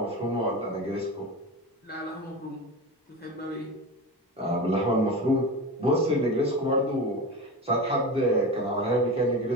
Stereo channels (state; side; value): normal; both; correlation 0.26